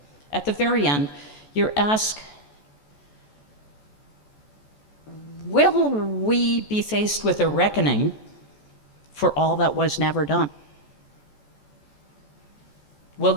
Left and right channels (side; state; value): right; late; 14 ms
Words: At the very end, you're asked, will we be faced with a reckoning for all that was never done?